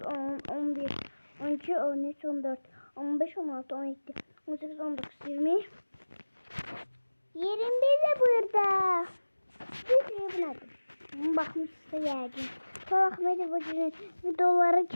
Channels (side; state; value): both; inverted; correlation -1.00